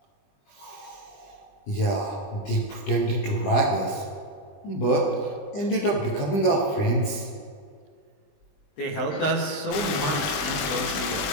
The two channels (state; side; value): late; right; 21 ms